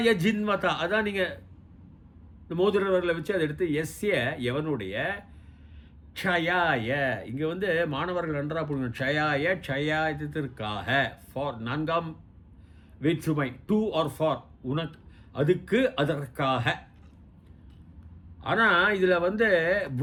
ஜின்வதா. அதான் நீங்கள் மோதிரவர்களை வச்சு அதை எடுத்து எஸ்ய எவனுடைய, க்ஷயாய இங்கே வந்து மாணவர்கள் நன்றாக போடுங்க. க்ஷயாய க்ஷயாயத்திற்காக, ஃபார் 4ஆம் வேற்றுமை, டு ஆர் ஃபார், உனக்கு, அதுக்கு, அதற்காக. ஆனால் இதில் வந்து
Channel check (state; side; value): identical; both; correlation 1.00